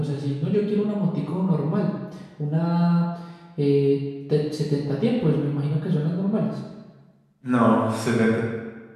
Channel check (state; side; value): identical; both; correlation 1.00